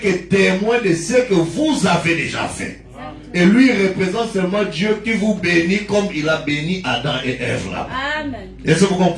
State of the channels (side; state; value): both; identical; correlation 1.00